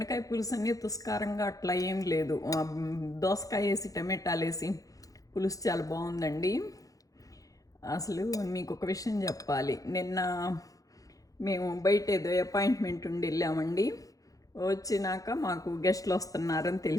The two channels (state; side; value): late; right; 0.17 ms